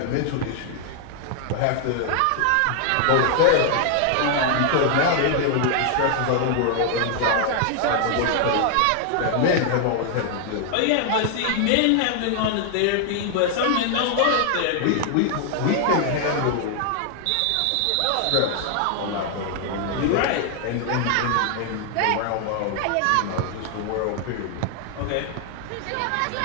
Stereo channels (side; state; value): both; different; correlation 0.00